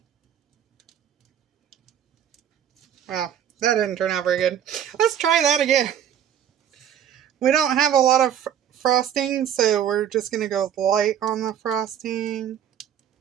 Wow, that didn't turn out very good. Let's try that again. We don't have a lot of frosting, so we're just going to go light on the frosting.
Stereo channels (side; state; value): left; quieter; 9.6 dB